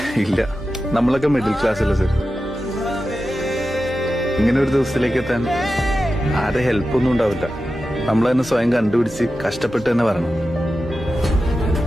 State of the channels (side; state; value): both; normal; correlation 0.92